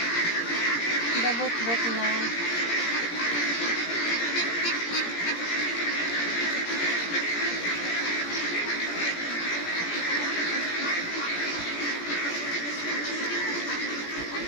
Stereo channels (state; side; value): late; right; 17 ms